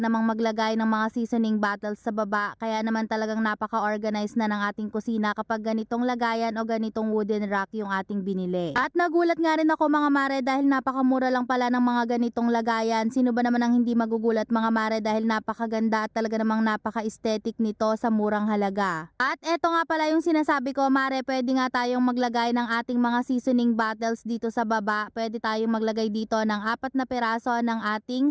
maglagay ng mga seasoning bottles sa baba. Kaya naman talagang napaka-organized na ng ating kusina kapag ganitong lagayan o ganitong wooden rack yung ating binili. At nagulat nga rin ako mga mare dahil napakamura lang pala ng mga ganitong lagayan. Sino ba naman ang hindi magugulat mga mare dahil napakaganda at talaga namang napaka-aesthetic nito sa murang halaga. At eto nga pala yung sinasabi ko mare, pwede nga tayong maglagay ng ating mga seasoning bottles dito sa baba. Pwede tayong maglagay dito ng 4 na piraso ng ating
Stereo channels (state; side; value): identical; both; correlation 1.00